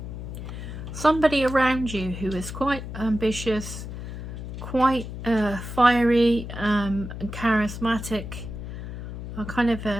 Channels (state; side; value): noise; left; hum, 8 dB below the sound